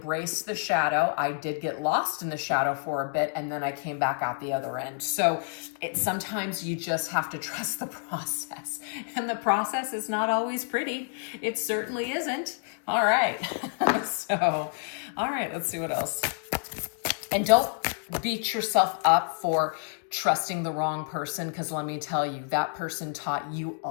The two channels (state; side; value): silent; right; 59 dB below the other